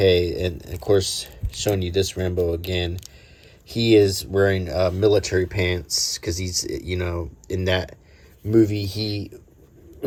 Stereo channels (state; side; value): identical; both; correlation 1.00